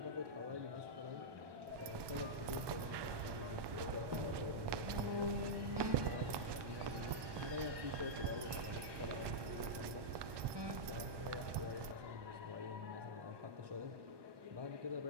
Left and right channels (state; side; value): late; left; 1.2 ms